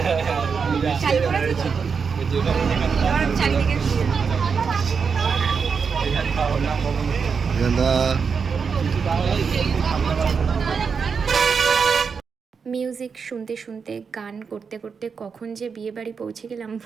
মিউজিক শুনতে শুনতে গান করতে করতে কখন যে বিয়ে বাড়ি পৌঁছে গেলাম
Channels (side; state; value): left; quieter; 5.8 dB